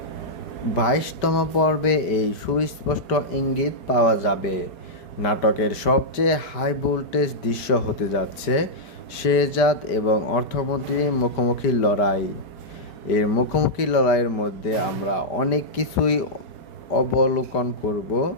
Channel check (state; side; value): late; right; 5.0 ms